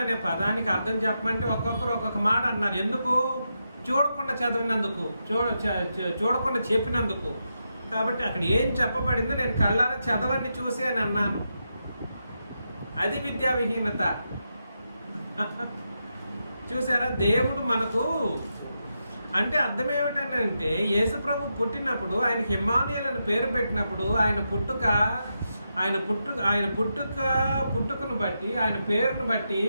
అనే పదానికి అర్థం చెప్పమంటే ఒక్కొక్కరు ఒక్కొక్క మాట అన్నారు. ఎందుకు? చూడకుండా చదివినందుకు, చూడకుండా చెప్పినందుకు. కాబట్టి అక్కడ ఏం చెప్పబడిందో నేను కళ్ళారా చదవండి చూసి అని అన్నాను. అది విద్యా విహీనత. చూసారా? దేవుడు మనకు అంటే అర్థం ఏమిటంటే, యేసు ప్రభు పుట్టినప్పుడు ఆయనకి ఇమ్మానుయేలు పేరు పెట్టినప్పుడు ఆయన పుట్టుకను బట్టి, ఆయన పేరును బట్టి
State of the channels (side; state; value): both; inverted; correlation -0.85